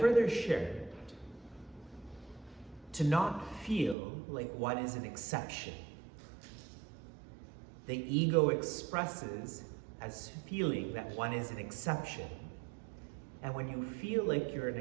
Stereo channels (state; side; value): drops out; left; at 4.0 s